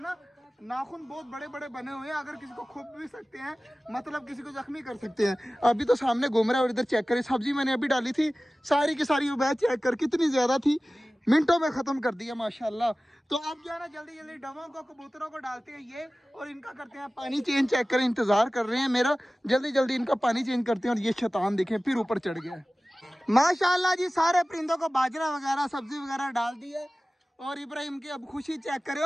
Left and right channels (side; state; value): both; normal; correlation 0.97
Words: ना नाखून बहुत बड़े बड़े बने हुए हैं, अगर किसी को खुप भी सकते हैं, मतलब किसी को जख्मी कर सकते हैं। अभी तो सामने घूम रहा है। और इधर चेक करें, सब्जी मैंने अभी डाली थी सारी की सारी, वो चेक कर कितनी ज्यादा थी, मिनटों में खत्म कर दिया माशाल्लाह। तो अब जो है ना जल्दी जल्दी डवों को, कबूतरों को डालते हैं ये, और इनका करते हैं पानी चेंज। चेक करें, इंतजार कर रहे हैं मेरा, जल्दी जल्दी इनका पानी चेंज करते हैं। और ये शैतान देखें फिर ऊपर चढ़ गया है। माशाल्लाह जी, सारे परिंदों को बाजरा वगैरह सब्जी वगैरह डाल दी है। और इब्राहिम की अब खुशी चेक करे।